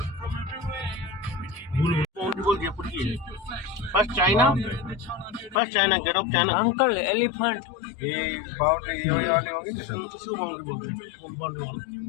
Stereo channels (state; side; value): drops out; right; at 5.6 s